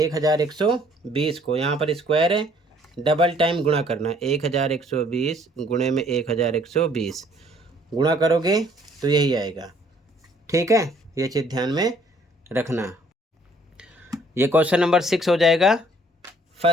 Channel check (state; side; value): normal; both; correlation 0.60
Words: को यहाँ पर स्क्वायर है, डबल टाइम गुणा करना। 1120 गुणे में 1120 गुणा करोगे तो यही आएगा। ठीक है, ये चीज़ ध्यान में रखना। ये क्वेश्चन नंबर 6 हो जाएगा